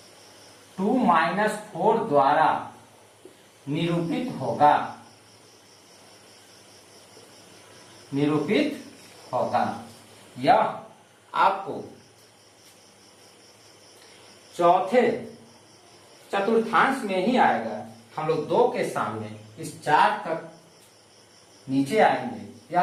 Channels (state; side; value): identical; both; correlation 1.00